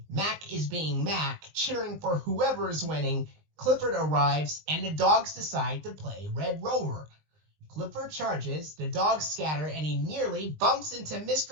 Mac is being Mac, cheering for whoever is winning. Clifford arrives, and the dogs decide to play Red Rover. Clifford charges, the dogs scatter, and he nearly bumps into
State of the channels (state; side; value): late; left; 20 ms